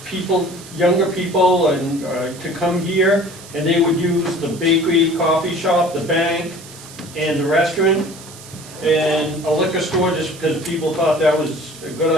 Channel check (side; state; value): right; noise; hiss, 18 dB below the sound